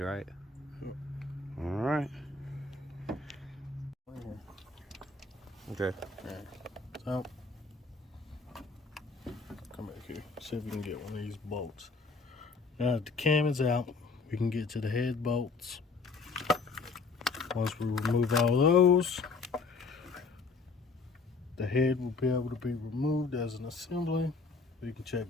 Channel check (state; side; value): quieter; right; 4.2 dB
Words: right? All right. Okay. So, come back here. See if we can get one of these bolts. Now that the cam is out, we can get to the head bolts. Once we remove all those, the head will be able to be removed as an assembly. We can